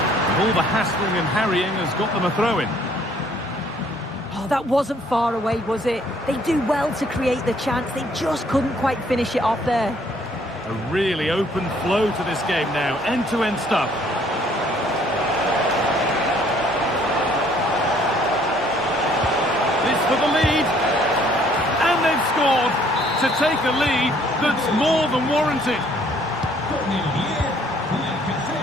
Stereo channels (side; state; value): both; normal; correlation 0.62